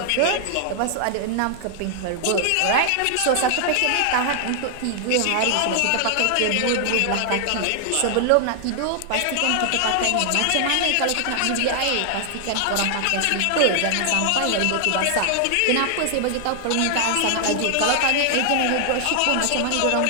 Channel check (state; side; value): different; both; correlation 0.00